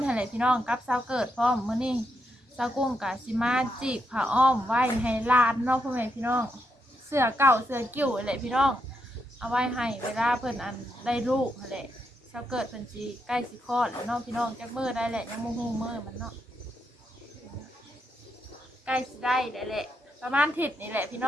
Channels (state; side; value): normal; both; correlation 0.81